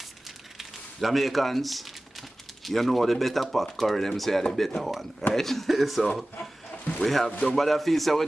Jamaicans, you know the better pot curry, them say are the better one, right? So we have, don't bother feel so we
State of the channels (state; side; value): normal; both; correlation 0.97